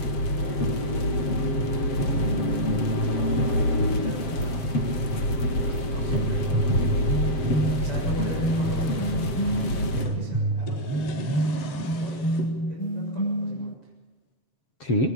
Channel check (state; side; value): late; right; 7.6 ms